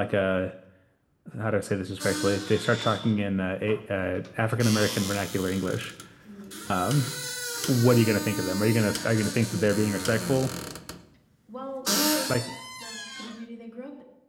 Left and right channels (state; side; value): identical; both; correlation 1.00